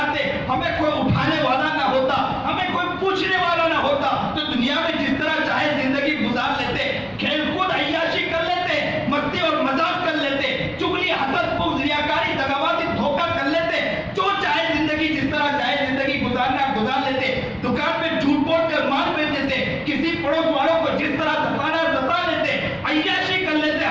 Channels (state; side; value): identical; both; correlation 1.00